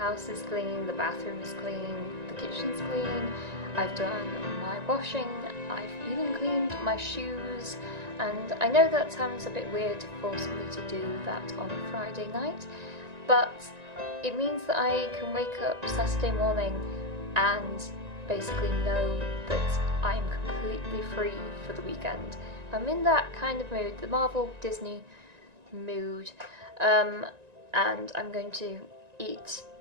is clean, the bathroom is clean, the kitchen's clean, I've done my washing, I've even cleaned my shoes, and I know that sounds a bit weird to force me to do that on a Friday night, but it means that I can wake up Saturday morning and basically know that I'm completely free for the weekend. I'm in that kind of mood, the Marvel Disney mood, and I'm going to eat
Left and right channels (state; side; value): late; left; 1.9 ms